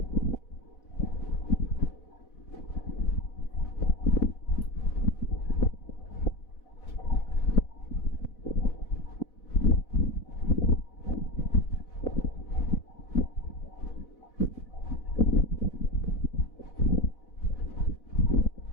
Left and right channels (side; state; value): right; late; 4.1 ms